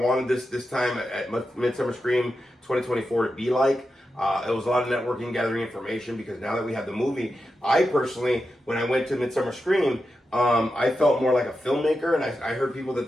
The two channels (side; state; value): both; normal; correlation 0.89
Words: this time at Midsummer Scream 2024 to be like. It was a lot of networking, gathering information, because now that we have the movie, I personally, when I went to Midsummer Scream, I felt more like a filmmaker, and I heard people